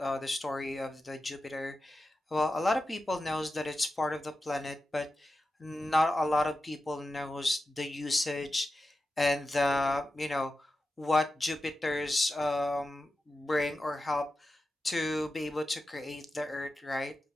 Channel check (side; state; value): both; normal; correlation 0.92